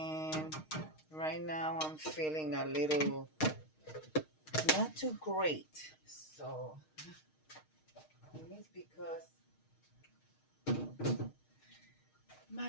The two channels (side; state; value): right; late; 6.4 ms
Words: right now I'm feeling a little not too great, so it's because